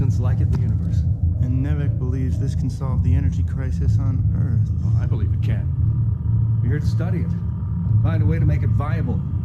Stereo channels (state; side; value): identical; both; correlation 1.00